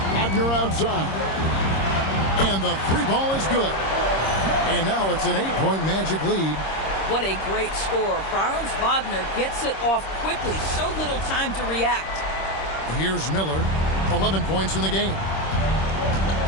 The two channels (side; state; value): right; late; 26 ms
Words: Wagner outside. And the 3 ball is good. And now it's an 8-point Magic lead. What a great score. Franz Wagner gets it off quickly. So little time to react. Here's Miller. 11 points in the game.